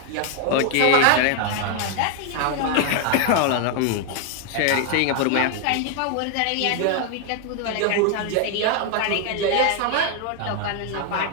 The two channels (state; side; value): different; both; correlation 0.00